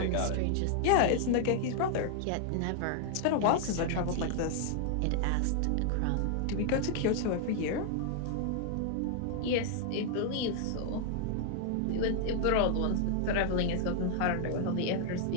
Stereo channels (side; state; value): both; different; correlation 0.00